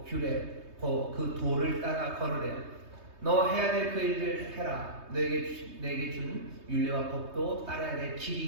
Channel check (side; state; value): left; late; 3.2 ms